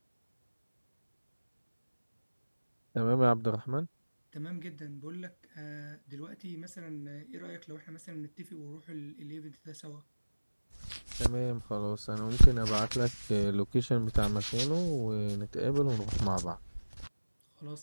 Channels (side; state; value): both; inverted; correlation -1.00